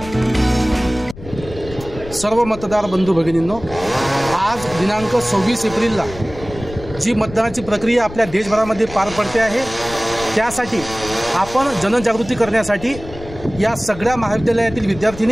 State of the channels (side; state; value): left; noise; rumble, 14 dB below the sound